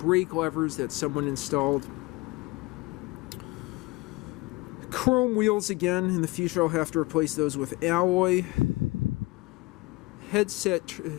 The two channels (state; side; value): quieter; right; 23.0 dB